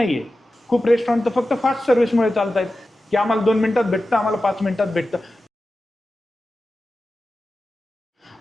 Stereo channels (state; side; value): normal; both; correlation 0.93